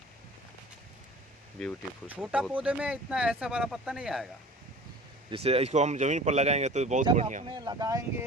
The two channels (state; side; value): normal; both; correlation 0.42